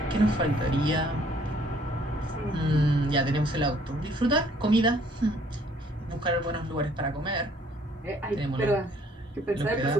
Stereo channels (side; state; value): both; normal; correlation 0.61